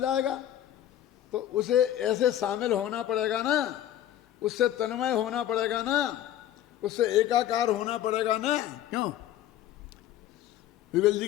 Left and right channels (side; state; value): right; quieter; 11.9 dB